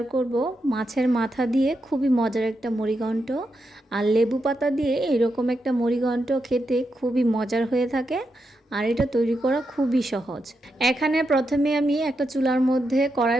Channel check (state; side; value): normal; both; correlation 0.85